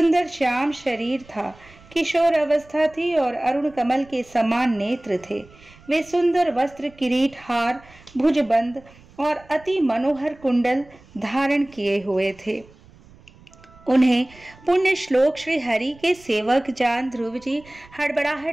श्याम शरीर था, किशोर अवस्था थी और अरुण कमल के समान नेत्र थे। वे सुंदर वस्त्र, किरीट, हार, भुजबंद और अति मनोहर कुंडल धारण किए हुए थे। उन्हें पुण्य श्लोक श्री हरि के सेवक जान ध्रुव जी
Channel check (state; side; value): noise; right; rumble, 25 dB below the sound